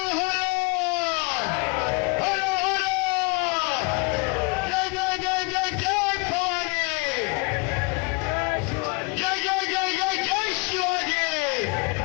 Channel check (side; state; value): right; quieter; 29.0 dB